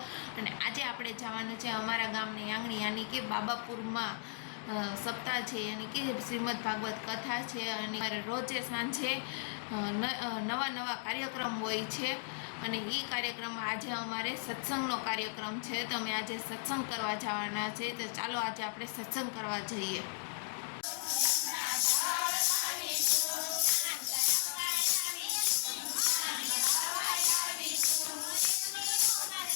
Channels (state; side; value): silent; right; digital silence